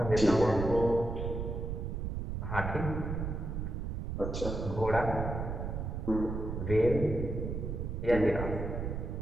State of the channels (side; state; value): right; noise; rumble, 4 dB below the sound